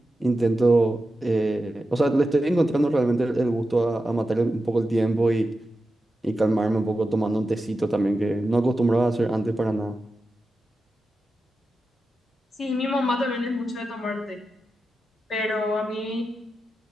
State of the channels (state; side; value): normal; both; correlation 0.91